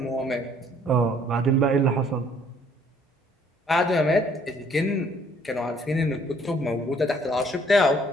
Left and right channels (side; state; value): both; normal; correlation 0.61